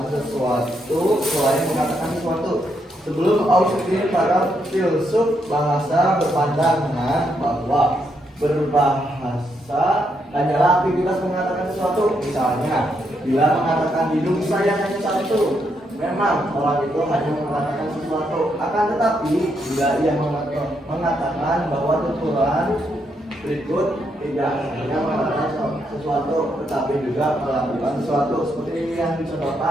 sesuatu selain mengatakan sesuatu. Sebelum Austin, para filsuf bahasa berpandangan bahwa berbahasa hanyalah aktivitas mengatakan sesuatu. Misalnya, bila mengatakan hidung saya hanya satu, memang orang itu hanya mengatakan sesuatu. Akan tetapi, bila ia mengatakan bahwa tuturan berikut tidak hanya mengatakan sesuatu, tetapi juga melakukan sesuatu, seperti yang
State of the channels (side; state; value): both; normal; correlation 0.78